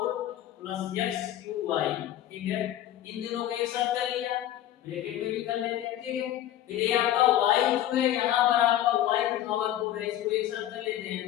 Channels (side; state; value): right; quieter; 12.4 dB